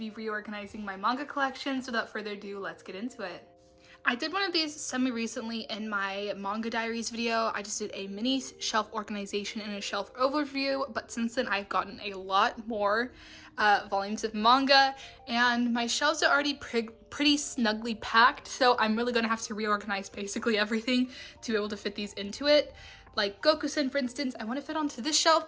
reorganizing my manga collection, so without further ado, let's get into it. I did one of these semi-recently in my manga diaries video. I just did a mini shelf organization and a shelf overview, but since then I've gotten a lot more volumes of manga and my shelves are already pretty snugly packed, so I'm really gonna have to reorganize basically everything to be able to fit these into it. Like Goku-san, for instance, I want to fit onto this shelf,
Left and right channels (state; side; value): identical; both; correlation 1.00